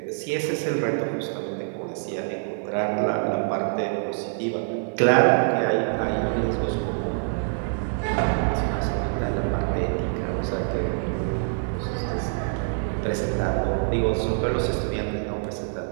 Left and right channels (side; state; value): left; silent; digital silence